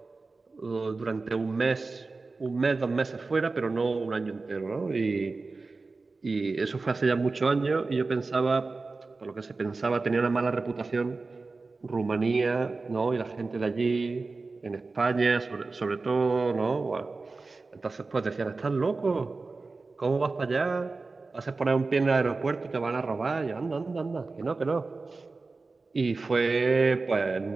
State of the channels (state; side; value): quieter; left; 3.8 dB